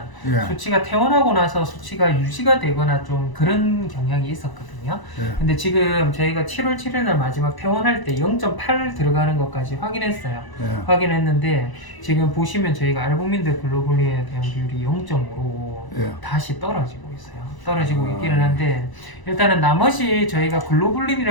예. 수치가 퇴원하고 나서 수치가 유지가 되거나 좀 그런 경향이 있었거든요. 예. 근데 지금 저희가 7월 7일 날 마지막 퇴원할 때 0.8 들어가는 것까지 확인했어요. 예. 확인했는데 지금 보시면 저희가 알부민들 글로불린에 대한 비율이 0.5로 예. 다시 떨어지고 있어요. 떨어지고 아. 있기는 한데 일단은 나머지 저희가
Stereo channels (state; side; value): late; right; 1.0 ms